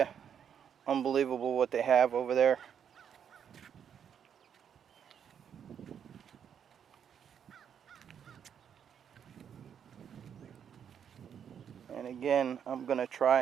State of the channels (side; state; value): left; quieter; 8.2 dB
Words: Unbelievable what they have over there. And again, I'm going to